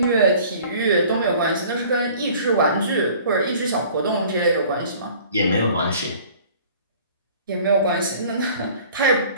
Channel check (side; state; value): both; inverted; correlation -0.50